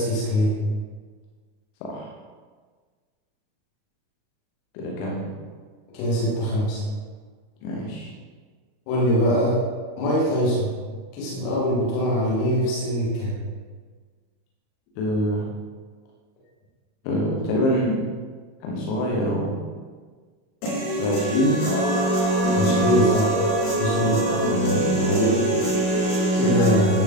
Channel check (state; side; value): late; right; 38 ms